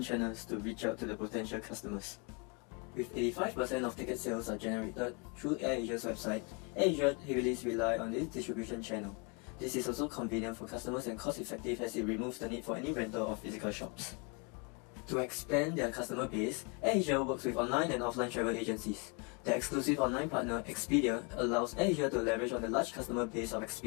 channels to reach out to the potential customers. With 85% of ticket sales are generated through AirAsia's website, AirAsia heavily relies on this distribution channel. This is also convenient for customers and cost-effective as it removes the need for any rental of physical shops. To expand their customer base, AirAsia works with online and offline travel agencies. The exclusive online partner, Expedia, allows AirAsia to leverage on the large customer base of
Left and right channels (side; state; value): right; quieter; 33.1 dB